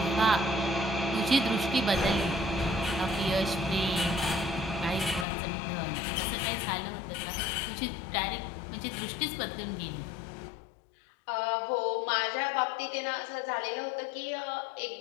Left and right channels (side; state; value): right; drops out; at 5.2 s